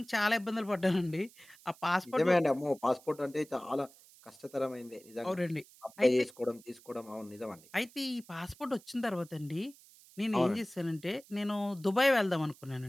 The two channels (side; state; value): right; noise; hiss, 24 dB below the sound